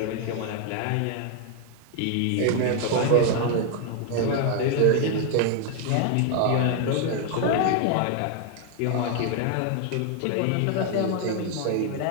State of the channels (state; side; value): different; both; correlation 0.00